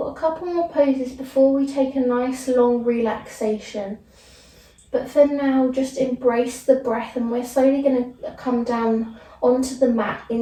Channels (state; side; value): identical; both; correlation 1.00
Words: a couple more poses before we take a nice long relaxation. But for now, just embrace the breath, and we're slowly going to come down onto the mat